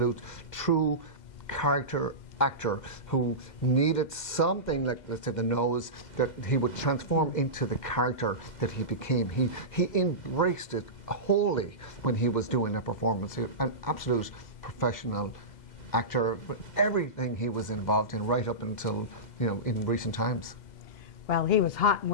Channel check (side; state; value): right; late; 2.0 ms